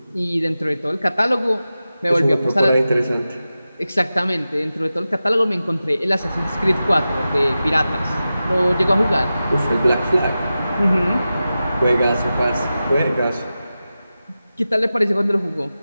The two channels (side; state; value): both; inverted; correlation -0.93